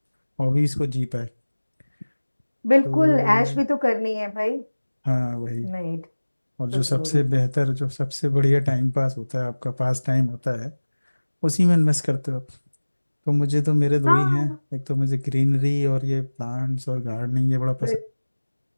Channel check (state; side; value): inverted; both; correlation -1.00